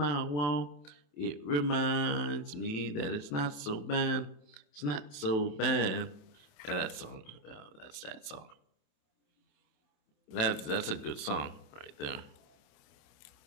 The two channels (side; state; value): right; late; 27 ms